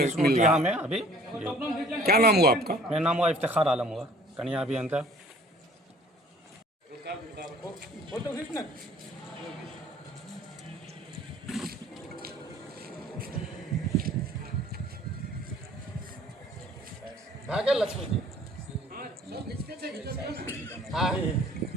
रहा यहाँ है। में अभी क्या नाम हुआ आपका? मेरा नाम हुआ इफ्तिखार आलम हुआ, कन्या अभियंता। लक्ष्मी जी हाँ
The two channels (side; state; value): both; normal; correlation 0.53